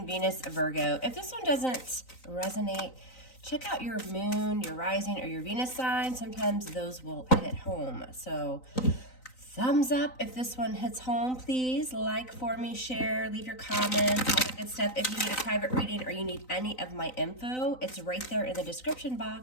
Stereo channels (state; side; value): late; right; 3.9 ms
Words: Venus, Virgo. If this one doesn't resonate, check out your Moon, your Rising, or your Venus sign. Sometimes those will hit home. So thumbs up if this one hits home, please. Like for me, share, leave your comments, all the good stuff. If you need a private reading or you need any of my info, it's right there in the description